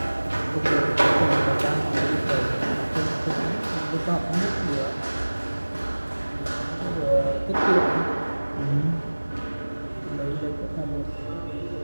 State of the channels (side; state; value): both; inverted; correlation -1.00